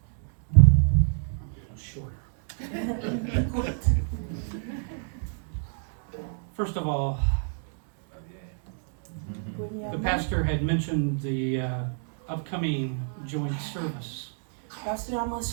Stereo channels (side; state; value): left; silent; digital silence